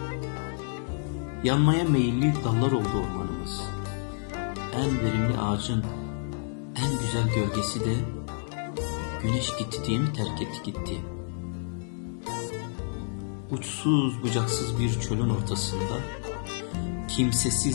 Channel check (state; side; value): silent; right; digital silence